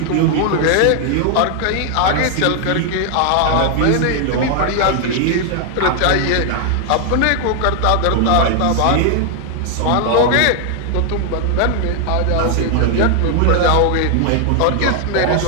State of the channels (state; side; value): different; both; correlation 0.00